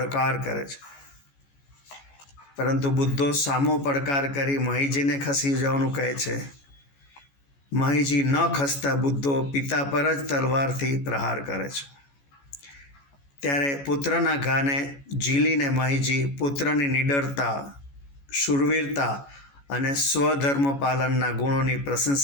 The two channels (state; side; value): late; right; 14 ms